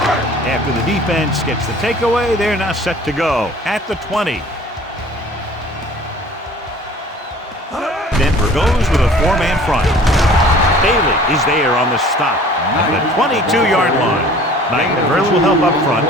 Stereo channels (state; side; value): normal; both; correlation 0.49